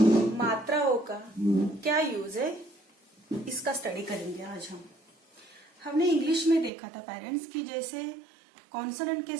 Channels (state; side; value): drops out; left; at 6.7 s